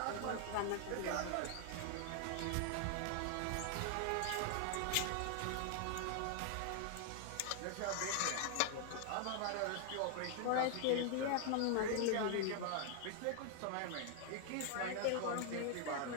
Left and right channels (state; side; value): different; both; correlation 0.00